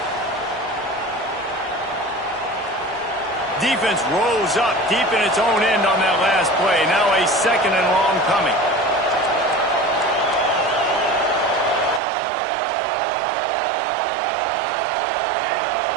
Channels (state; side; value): drops out; left; at 12.0 s